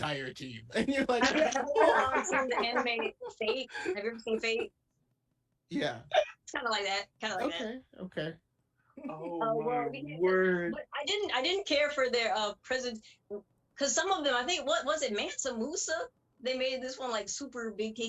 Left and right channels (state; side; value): identical; both; correlation 1.00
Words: team. And you're like, have you ever seen the anime Fate? Have you ever seen Fate? Yeah. It's kind of like that. Okay. Oh my word! But I didn't care for their presence, because some of them, I think, what was it, Mansa Musa? They made this one like super big